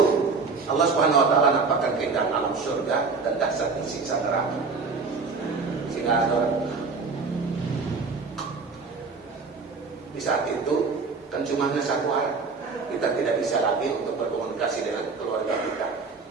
Allah Subhanahu Wa Taala nampakkan keindahan alam surga dan dahsyatnya siksa neraka. Sehingga ada di saat itu kan cuma hanya 1 hari. Kita tidak bisa lagi untuk berkomunikasi dengan keluarga kita.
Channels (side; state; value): left; quieter; 4.5 dB